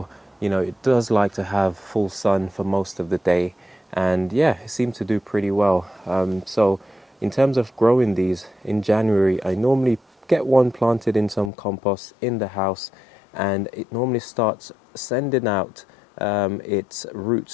you know, it does like to have full sun for most of the day, and yeah, it seemed to do pretty well. So in terms of growing these in January, I normally get one planted in some compost in the house, and it normally starts sending out its roots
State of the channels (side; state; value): right; drops out; at 11.5 s